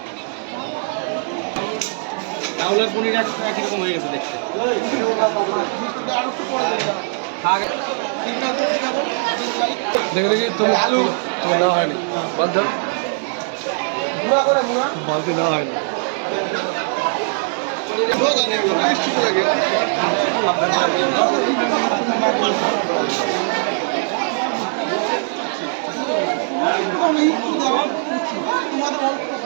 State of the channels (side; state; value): left; silent; 57 dB below the other